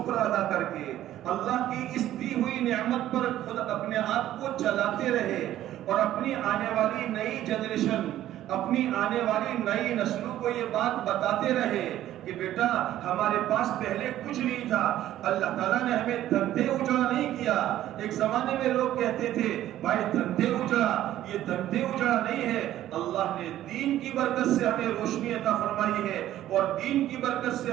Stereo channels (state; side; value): quieter; left; 13.1 dB